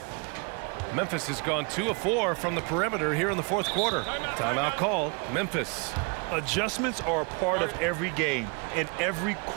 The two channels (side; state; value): left; quieter; 33.3 dB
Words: Memphis has gone 2 of 4 from the perimeter here in the fourth quarter. Timeout called. Memphis. Adjustments are a part of every game and every